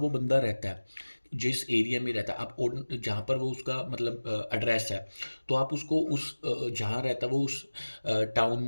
बंदा रहता है, जिस एरिया में रहता है, आप जहाँ पर वो उसका मतलब एड्रेस है, तो आप उसको उस जहाँ रहता है वो उस टाउन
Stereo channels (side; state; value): both; inverted; correlation -1.00